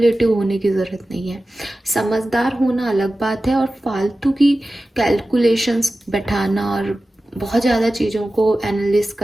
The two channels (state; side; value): normal; both; correlation 0.95